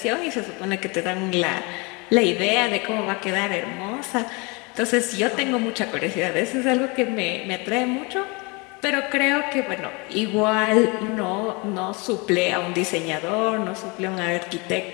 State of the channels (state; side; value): quieter; right; 28.7 dB